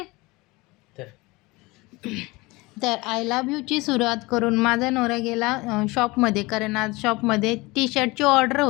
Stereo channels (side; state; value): right; quieter; 22.8 dB